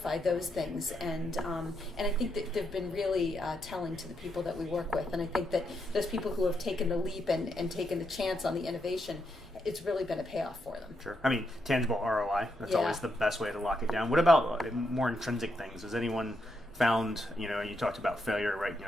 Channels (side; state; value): both; normal; correlation 0.81